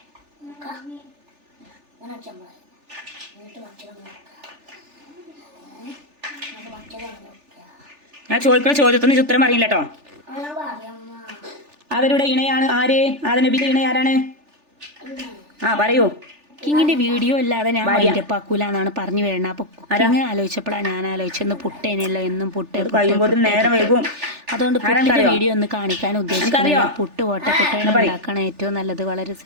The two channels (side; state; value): left; late; 3.4 ms